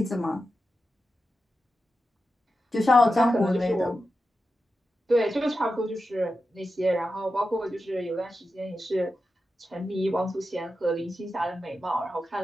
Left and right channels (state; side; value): normal; both; correlation 0.91